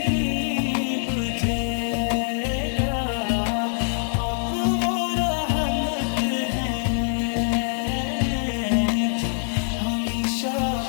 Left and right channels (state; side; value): silent; right; digital silence